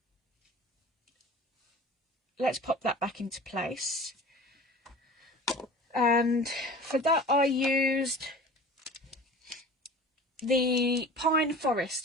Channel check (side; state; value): both; normal; correlation 0.40